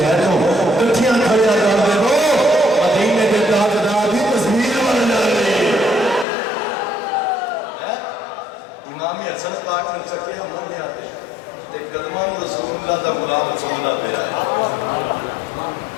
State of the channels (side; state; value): right; drops out; at 6.2 s